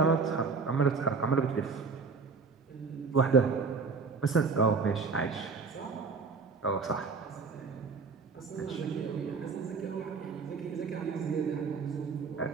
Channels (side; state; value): left; quieter; 4.8 dB